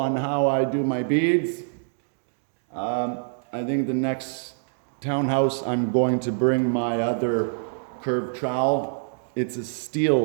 how I do my beads. I think the next townhouse I'm going to bring my other curved trowel. It's a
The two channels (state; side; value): silent; left; digital silence